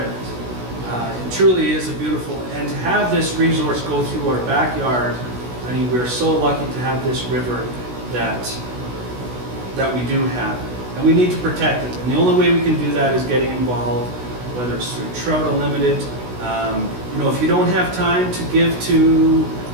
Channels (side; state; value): left; late; 16 ms